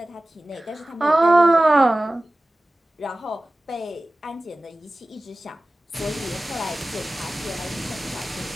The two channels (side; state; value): both; normal; correlation 0.96